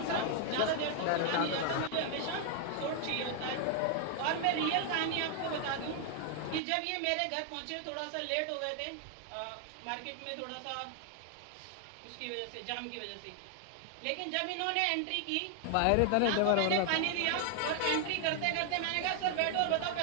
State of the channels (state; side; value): different; both; correlation 0.00